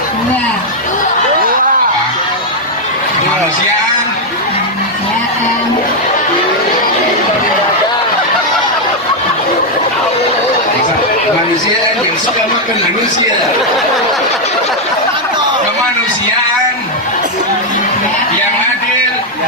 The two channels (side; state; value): both; normal; correlation 0.00